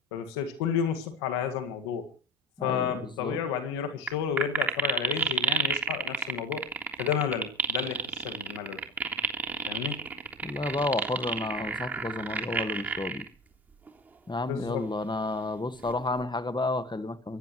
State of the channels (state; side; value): normal; both; correlation 0.30